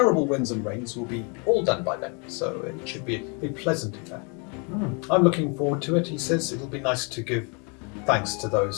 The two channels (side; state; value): right; quieter; 34.7 dB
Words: winds and rains will be all done by then, so it should be a pleasant affair. I'm looking forward to it, he says. It'll be nice to give thanks to